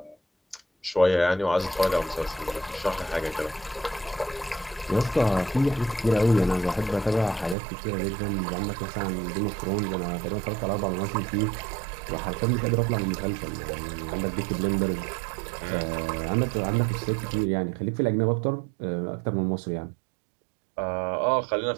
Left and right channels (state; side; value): drops out; left; at 7.6 s